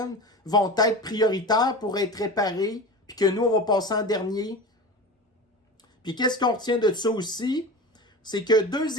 vont être prioritaires pour être réparés, puis que nous, on va passer en dernier? Puis qu'est-ce qu'on retient de ça aussi? C'est que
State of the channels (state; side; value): normal; both; correlation 0.30